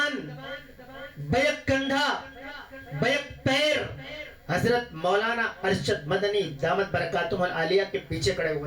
بیک کندھا، بیک پیر حضرت مولانا ارشد مدنی دامت برکاتہم العالیہ کے پیچھے کھڑے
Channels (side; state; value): both; identical; correlation 1.00